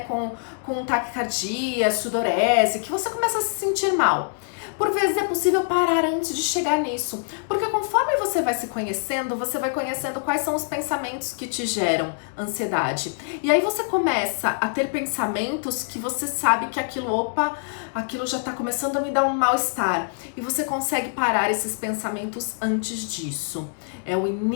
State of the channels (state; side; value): silent; right; digital silence